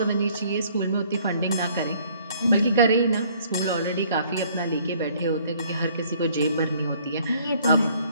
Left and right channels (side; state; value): both; inverted; correlation -0.60